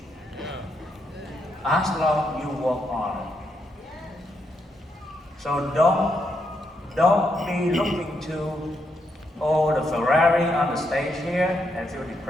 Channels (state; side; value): normal; both; correlation 0.80